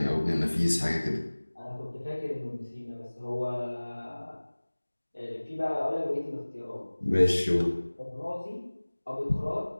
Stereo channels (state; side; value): inverted; both; correlation -1.00